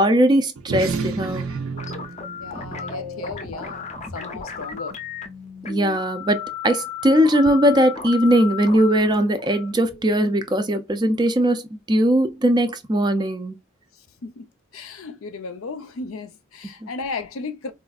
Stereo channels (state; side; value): normal; both; correlation 0.68